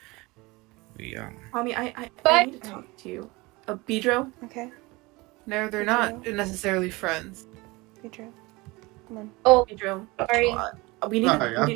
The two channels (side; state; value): left; quieter; 23.2 dB